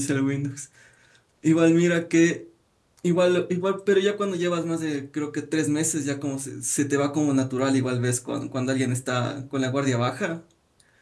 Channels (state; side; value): identical; both; correlation 1.00